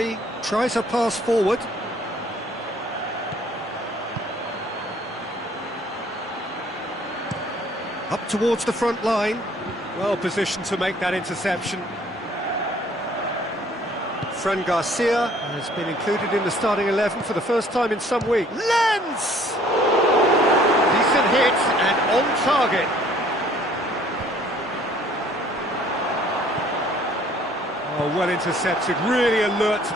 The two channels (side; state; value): both; normal; correlation 0.58